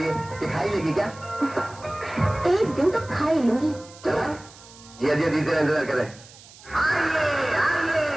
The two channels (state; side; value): noise; right; hiss, 21 dB below the sound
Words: है, ये खाई लेगी क्या? एक दिन तो खा ही लूंगी। चला जिया जिया दीदी इंतजार करे।